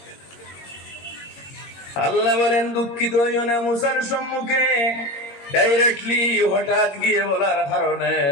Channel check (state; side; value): late; right; 22 ms